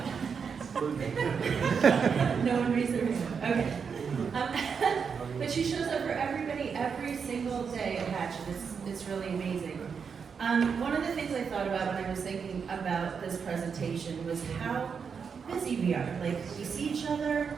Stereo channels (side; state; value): left; quieter; 6.2 dB